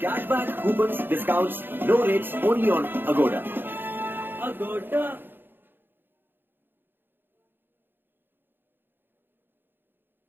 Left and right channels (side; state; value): left; late; 0.098 ms